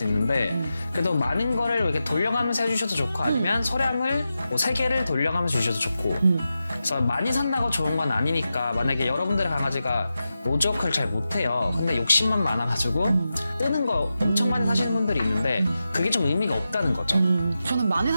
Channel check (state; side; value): inverted; both; correlation -0.91